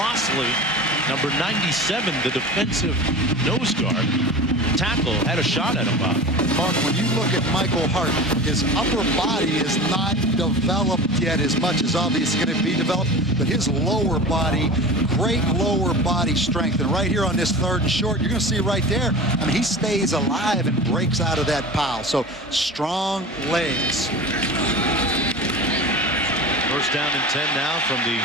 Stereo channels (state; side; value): normal; both; correlation 0.34